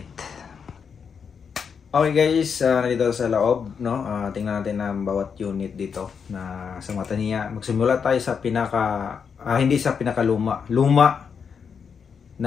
Okay guys, nandito sa loob, no? Tingnan natin ang bawat unit dito na sa mata niya. Magsimula tayo sa hindi sa pinakaluma. Luma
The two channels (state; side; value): quieter; right; 6.5 dB